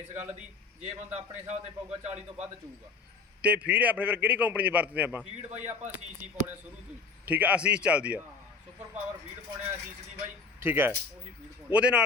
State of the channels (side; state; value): right; quieter; 4.6 dB